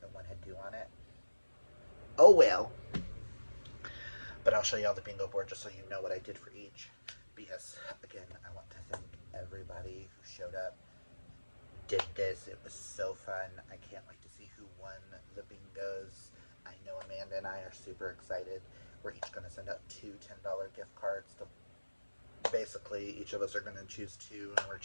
and one had 2 on it. Oh well. But I'll show you all the bingo board just so you know what I did for each. Because, again, I want to thank everybody who showed up, did this. It was so fun. I can't wait to see who won the bingos. I know Amanda and I are super excited. We're each going to send out 2 $10 gift cards. Basically, each of us are going to choose 2, and we're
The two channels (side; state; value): both; inverted; correlation -1.00